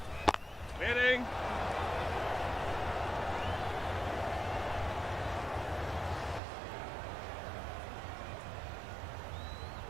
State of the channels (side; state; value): left; drops out; at 6.4 s